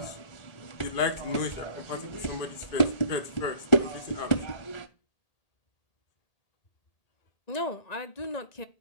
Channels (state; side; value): late; right; 1.8 ms